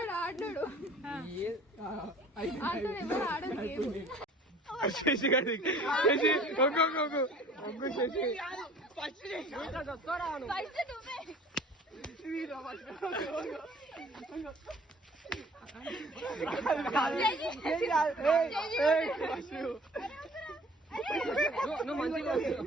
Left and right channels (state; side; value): normal; both; correlation 0.50